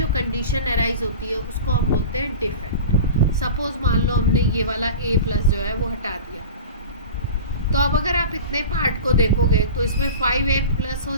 कंडीशन अराइज होती है उसको हम बोलते हैं डिफेक्ट। सपोज मान लो हमने ये वाला A+ जो है वो हटा दिया, तो अब अगर आप इतने पार्ट को देखोगे तो इसमें 5A+ हो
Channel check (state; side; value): inverted; both; correlation -0.34